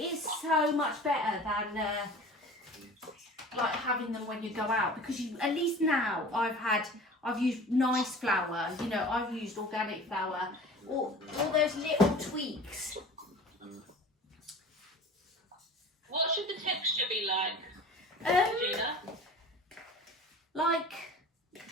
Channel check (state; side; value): normal; both; correlation 0.40